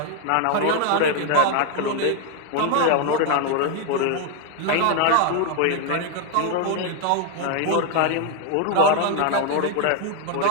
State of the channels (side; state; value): both; different; correlation 0.00